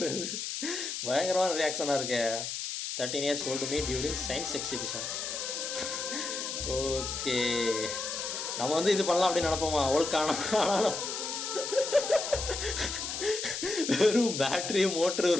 பயங்கரமான ரியாக்ஷனாக இருக்கே. 13 years old me during science exhibition. Okay, நம்ம வந்து இது பண்ணலாம் அப்படின்னு நினைப்போமா? ஆனாலும் வெறும் பேட்டரி மோட்ரு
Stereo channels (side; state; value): left; noise; hiss, 4 dB below the sound